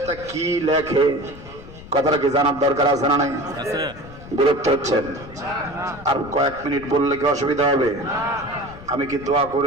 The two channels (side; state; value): left; noise; rumble, 17 dB below the sound